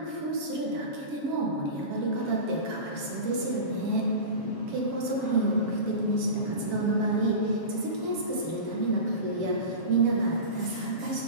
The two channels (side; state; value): left; late; 7.3 ms